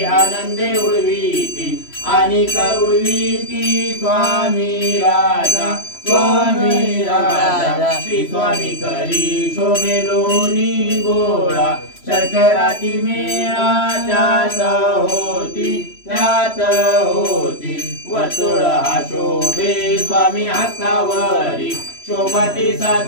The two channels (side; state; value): right; late; 3.0 ms